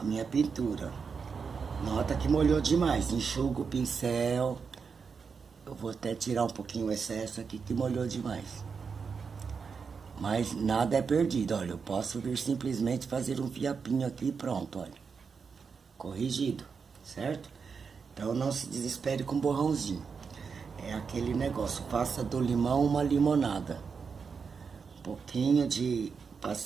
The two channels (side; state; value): left; quieter; 5.7 dB